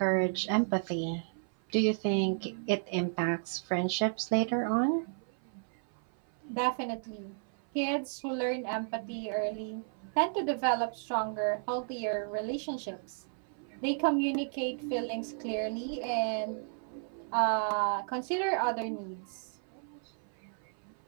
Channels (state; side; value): silent; left; 56 dB below the other